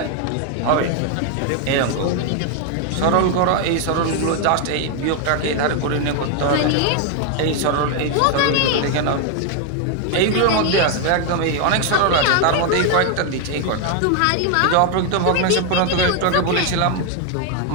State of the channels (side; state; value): both; different; correlation 0.01